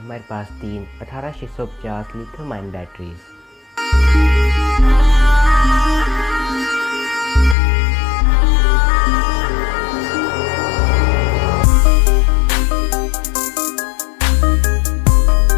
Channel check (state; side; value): drops out; right; at 7.6 s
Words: पास 3 18650 लिथियम आयन बैटरीज।